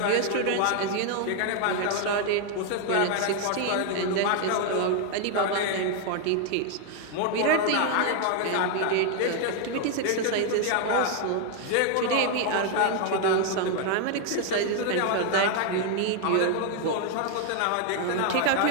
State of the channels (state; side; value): different; both; correlation 0.01